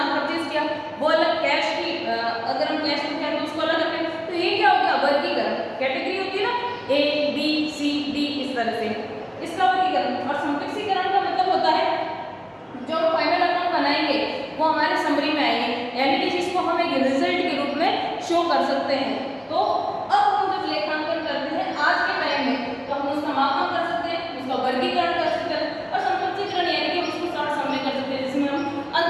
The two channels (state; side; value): identical; both; correlation 1.00